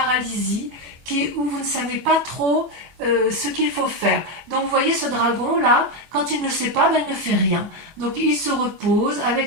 où vous ne savez pas trop ce qu'il faut faire. Donc vous voyez ce dragon là, quand il ne sait pas, ben, il ne fait rien. Donc il se repose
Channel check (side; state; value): left; late; 24 ms